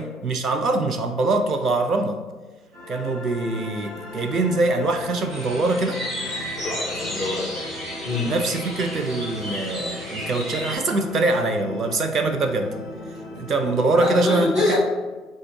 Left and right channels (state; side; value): normal; both; correlation 0.62